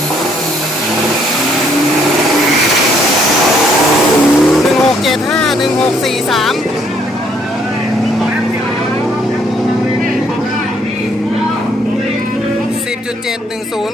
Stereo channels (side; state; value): both; normal; correlation 0.67